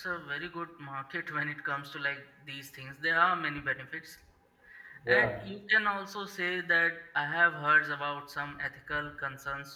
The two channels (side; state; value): both; identical; correlation 1.00